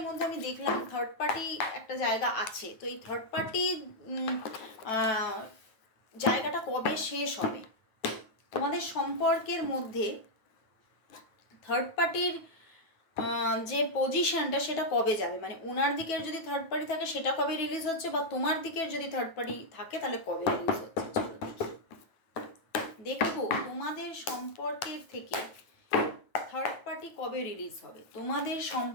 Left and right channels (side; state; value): right; late; 9.2 ms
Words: মধ্যে। আমি দেখলাম থার্ড পার্টি একটা জায়গা আছে, তো এই থার্ড পার্টি জায়গাটা কবে শেষ হবে তোমাদের সম্পর্কের মধ্যে। থার্ড পার্টির যে পজিশনটা সেটা কবে যাবে, মানে ওনার দিকের যদি থার্ড পার্টি থাকে সেটা কবে রিলিজ হচ্ছে, বা তোমার দিকের যদি থার্ড পার্টি থাকে তাহলে কবে রিলিজ হচ্ছে। চলো দেখি, দেখবো তোমাদের সম্পর্কের থেকে থার্ড পার্টি কবে রিলিজ হবে। তোমাদের